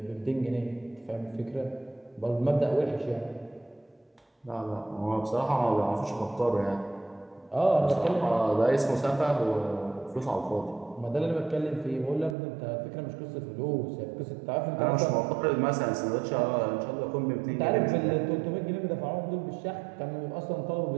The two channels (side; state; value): left; drops out; at 12.4 s